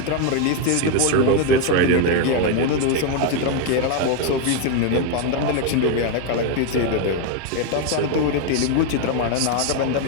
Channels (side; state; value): both; different; correlation 0.01